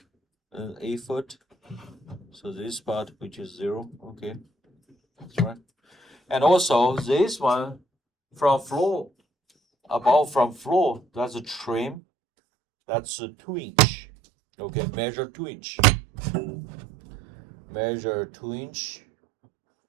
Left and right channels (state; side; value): drops out; left; at 12.0 s